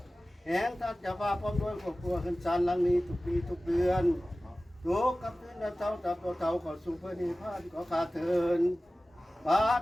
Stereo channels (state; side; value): normal; both; correlation 0.97